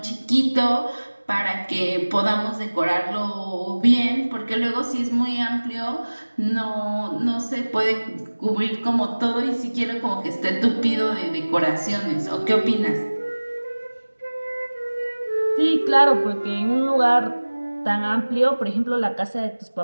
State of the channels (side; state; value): both; inverted; correlation -1.00